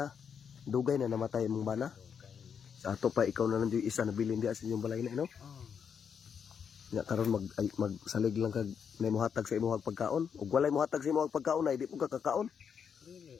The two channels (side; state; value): right; quieter; 7.1 dB